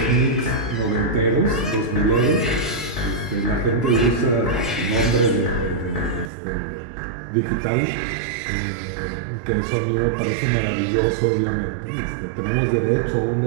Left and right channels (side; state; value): left; drops out; at 6.3 s